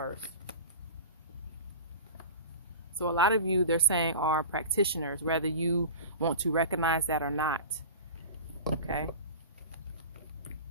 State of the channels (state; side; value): inverted; both; correlation -0.34